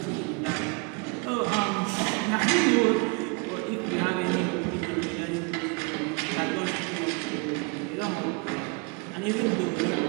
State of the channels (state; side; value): quieter; left; 31.9 dB